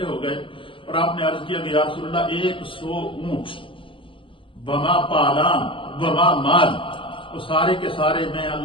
ہو گئے اور آپ نے عرض کیا کہ یا رسول اللہ 100 اونٹ بما پالان بما مال، تو سارے کے سارے میں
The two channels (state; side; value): late; right; 0.25 ms